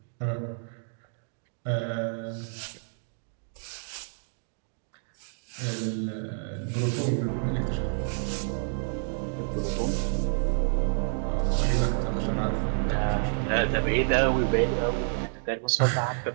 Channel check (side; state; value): left; silent; digital silence